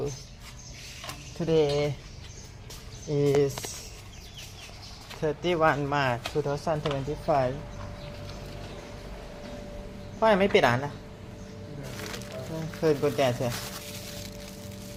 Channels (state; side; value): identical; both; correlation 1.00